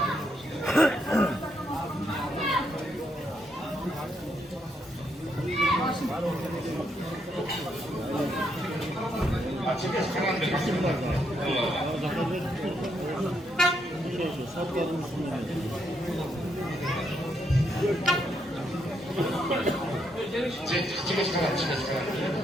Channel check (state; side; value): normal; both; correlation 0.77